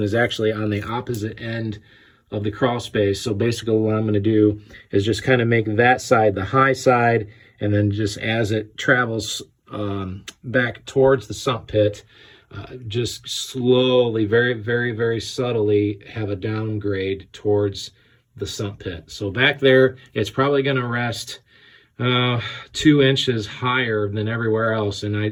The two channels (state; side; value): identical; both; correlation 1.00